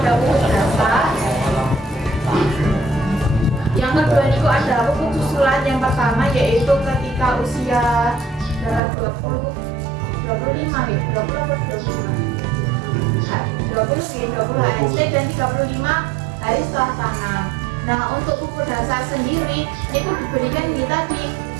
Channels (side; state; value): left; drops out; at 8.8 s